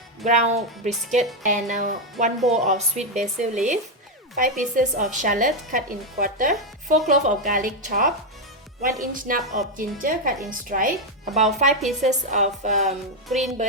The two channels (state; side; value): normal; both; correlation 0.04